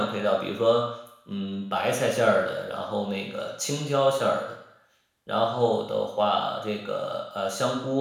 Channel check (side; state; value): both; identical; correlation 1.00